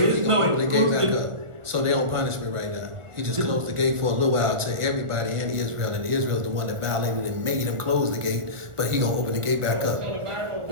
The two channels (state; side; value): late; left; 1.4 ms